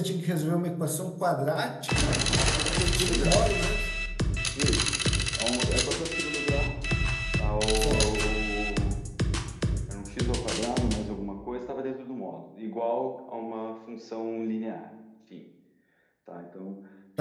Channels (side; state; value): both; identical; correlation 1.00